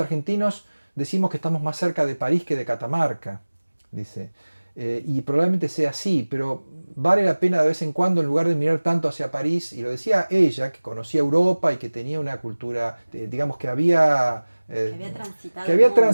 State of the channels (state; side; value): inverted; both; correlation -1.00